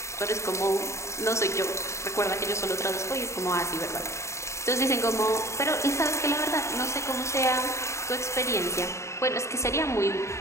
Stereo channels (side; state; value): right; late; 0.14 ms